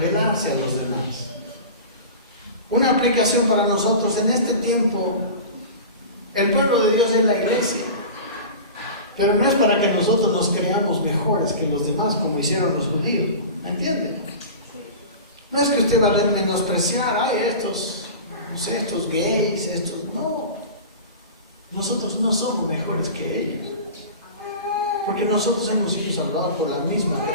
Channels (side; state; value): both; inverted; correlation -0.33